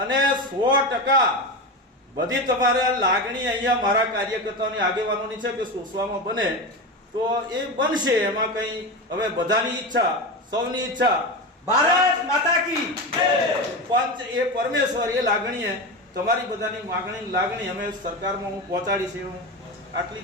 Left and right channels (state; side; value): normal; both; correlation 0.21